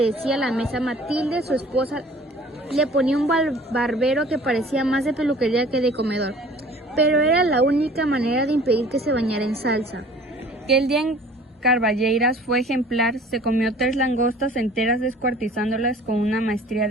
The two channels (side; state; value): both; normal; correlation 0.49